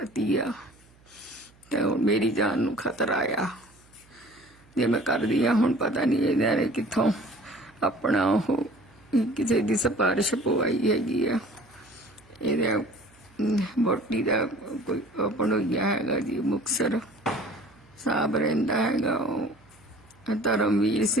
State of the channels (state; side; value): noise; right; hum, 29 dB below the sound